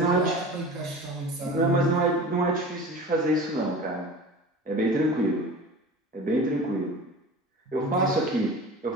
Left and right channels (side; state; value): both; normal; correlation 0.37